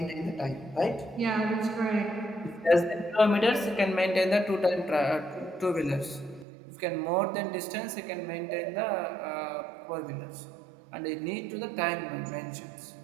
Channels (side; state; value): left; drops out; at 6.5 s